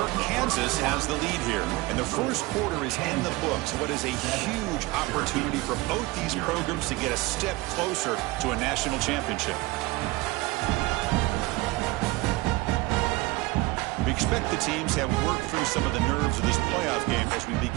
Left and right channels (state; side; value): quieter; left; 21.0 dB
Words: Kansas has the lead here, and the first quarter is in the books. What is a huge opportunity for both these programs to get a step closer to a national championship. expect the teams have worked through some of the nerves of this playoff game as we